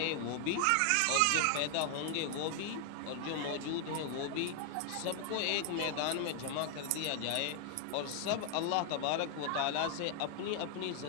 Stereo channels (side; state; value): both; different; correlation 0.00